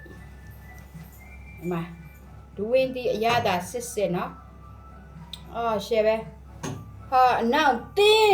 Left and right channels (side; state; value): both; identical; correlation 1.00